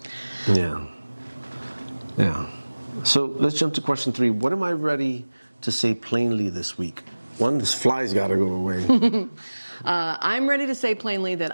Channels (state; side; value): inverted; both; correlation -1.00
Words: Yeah. Yeah. So let's jump to question 3. What am I ready to say plainly this week? One, this fly's got to go away. I'm ready to say plainly